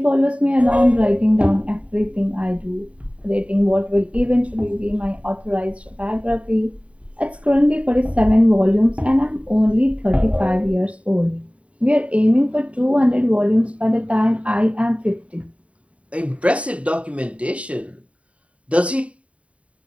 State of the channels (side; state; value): left; late; 0.064 ms